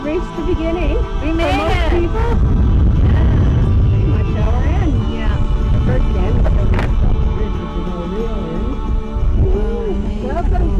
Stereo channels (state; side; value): identical; both; correlation 1.00